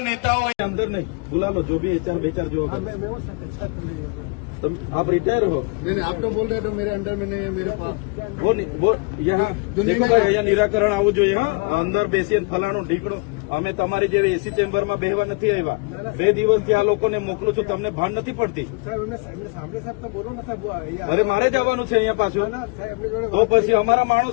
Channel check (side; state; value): right; quieter; 29.9 dB